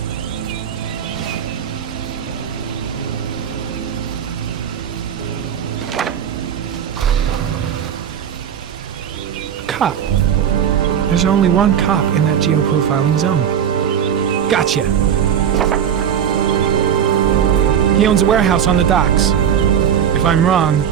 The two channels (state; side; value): quieter; left; 8.7 dB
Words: Cop. There's only one cop in that geoprofiling zone. Gotcha. He owns a warehouse on the docks. If I'm wrong,